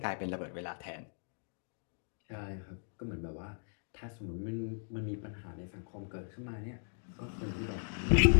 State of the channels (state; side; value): silent; right; digital silence